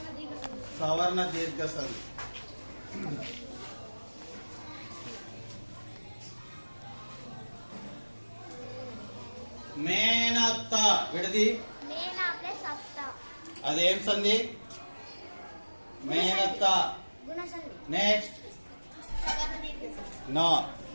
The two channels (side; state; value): both; inverted; correlation -1.00